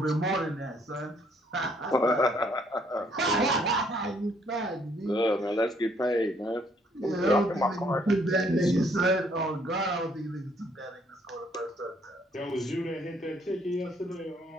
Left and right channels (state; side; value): normal; both; correlation 0.66